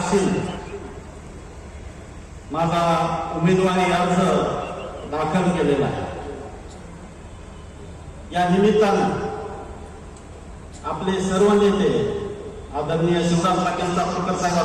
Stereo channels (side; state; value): both; identical; correlation 1.00